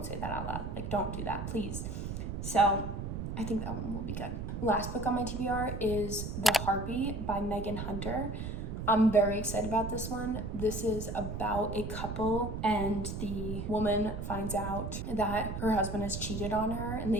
say that out loud. Like, don't do that, please. So I think that one will be good. Last book on my TBR is The Harpy by Megan Hunter. I'm very excited about this one. This is about a couple, and the woman finds out that her husband has cheated on her, and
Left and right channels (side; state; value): right; noise; rumble, 5 dB below the sound